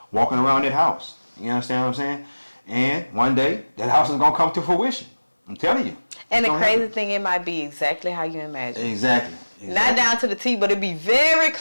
walking around that house. You understand what I'm saying? And one day, that house is going to come to fruition. I'm telling you. And the crazy thing, it might be exactly how you imagine. Exactly. Not down to the T, but it'd be very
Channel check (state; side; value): inverted; both; correlation -1.00